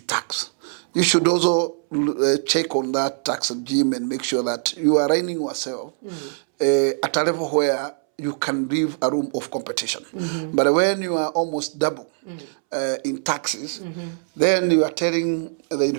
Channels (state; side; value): silent; left; 64 dB below the other